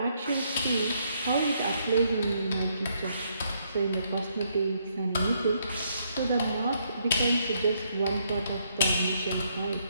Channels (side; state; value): both; inverted; correlation -0.73